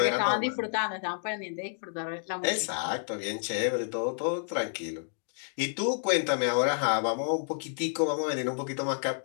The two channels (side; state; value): right; silent; digital silence